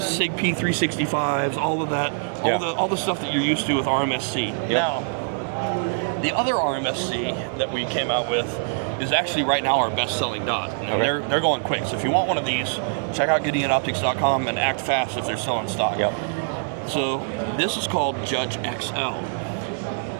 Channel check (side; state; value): left; silent; 63 dB below the other